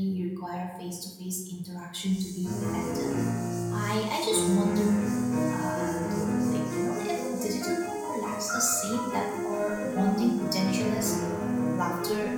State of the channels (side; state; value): both; identical; correlation 1.00